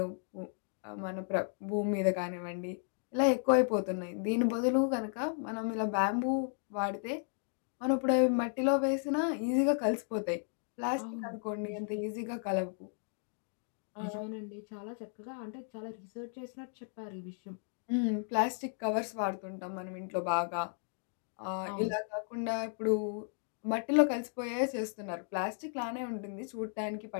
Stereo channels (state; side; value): silent; right; 55 dB below the other